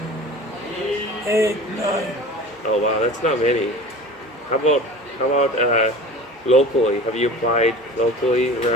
8, 9. Oh wow, that's not many. How about locally? Have you applied locally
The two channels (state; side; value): normal; both; correlation 0.37